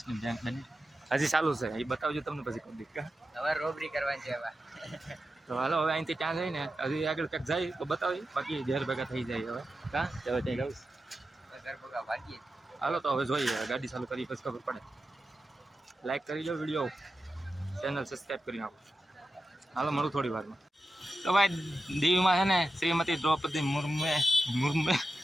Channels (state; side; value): normal; both; correlation 0.91